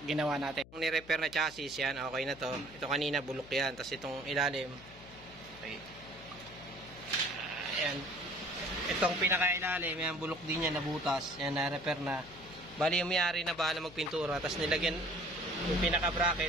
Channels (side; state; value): left; noise; hum, 20 dB below the sound